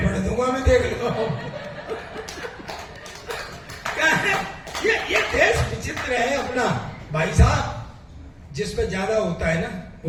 दूंगा मैं, देख लो। क्या है ये देश विचित्र है अपना भाई साहब। जिस पे ज्यादा होता है ना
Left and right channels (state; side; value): identical; both; correlation 1.00